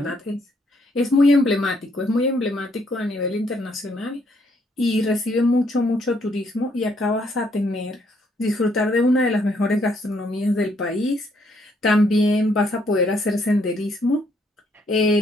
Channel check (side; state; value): both; normal; correlation 0.70